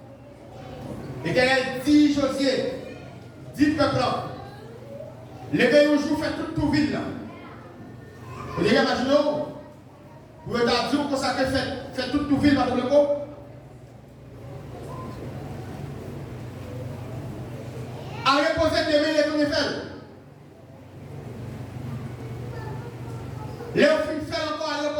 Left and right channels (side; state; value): both; identical; correlation 1.00